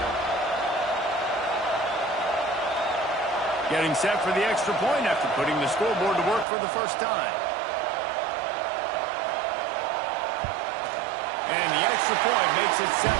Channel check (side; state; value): left; drops out; at 6.5 s